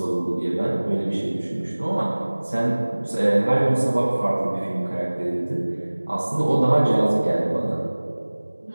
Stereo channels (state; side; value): inverted; both; correlation -1.00